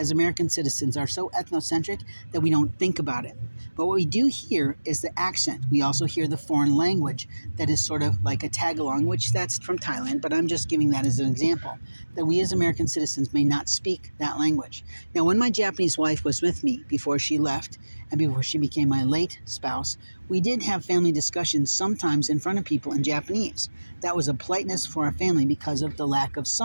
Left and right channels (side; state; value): both; inverted; correlation -1.00